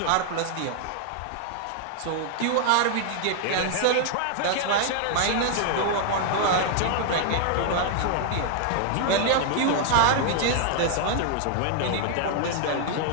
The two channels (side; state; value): both; different; correlation 0.00